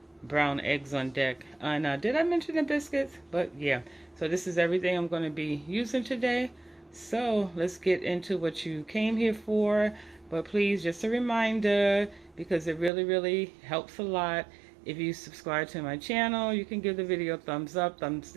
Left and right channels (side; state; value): left; drops out; at 12.9 s